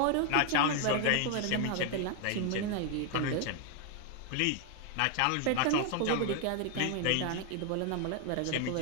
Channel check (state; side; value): different; both; correlation 0.01